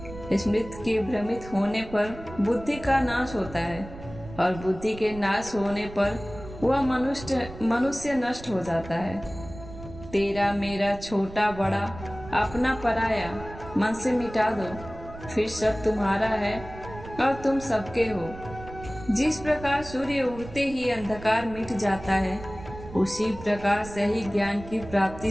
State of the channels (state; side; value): noise; right; rumble, 14 dB below the sound